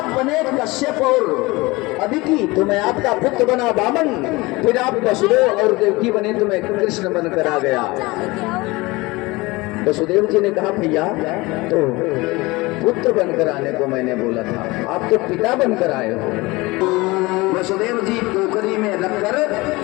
बने कश्यप और अदिति, तो मैं आपका पुत्र बना वामन, फिर आप वसुदेव और देवकी बने तो मैं कृष्ण बनकर आ गया। वसुदेव जी ने कहा, भैया तो पुत्र बनकर आने को मैंने बोला था, आप तो पिता बनकर आए हो। वसुदेव जी टोकरी में रखकर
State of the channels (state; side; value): quieter; right; 22.4 dB